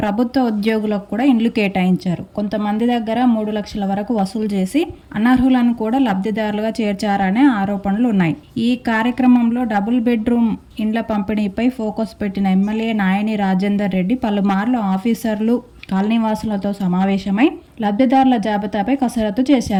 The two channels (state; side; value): identical; both; correlation 1.00